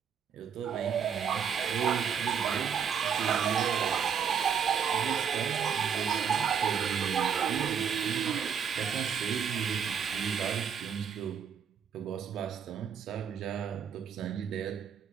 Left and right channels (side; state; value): left; quieter; 7.4 dB